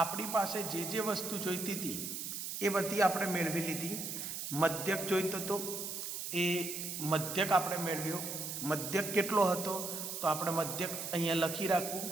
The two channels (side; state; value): right; noise; hiss, 5 dB below the sound